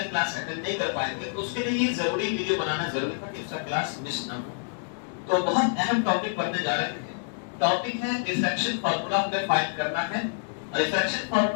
क्लास अटेंड नहीं कर पाएंगे, तो उसके लिए ये जरूरी वीडियो बनाना जरूरी था कि उसका क्लास मिस ना हो। तो बहुत अहम टॉपिक पढ़ने जा रहे हैं। टॉपिक है रिफ्रैक्शन फार्मूला हमें फाइंड करना है। रिफ्रैक्शन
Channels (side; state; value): right; silent; digital silence